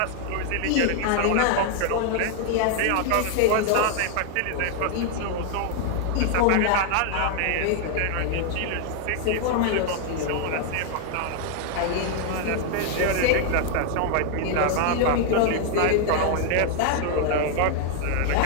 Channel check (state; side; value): different; both; correlation 0.00